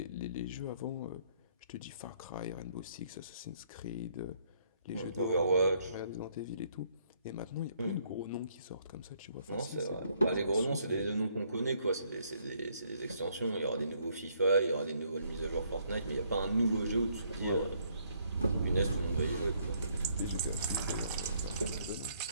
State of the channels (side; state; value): both; inverted; correlation -0.68